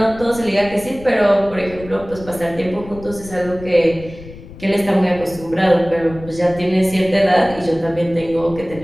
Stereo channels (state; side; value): noise; left; rumble, 16 dB below the sound